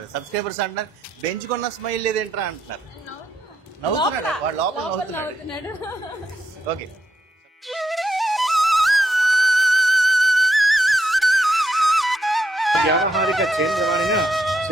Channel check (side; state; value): both; normal; correlation 0.81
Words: సబ్స్క్రైబర్స్ అంటున్నారు. బెంచుకున్న స్మైల్ లేదేంట్రా అంటున్నారు. నవ్వుతున్నాడు వాడు, లోపల నవ్వుతున్నాడు. ఓకే. వ్యావహారిక చేంద్రవాణిన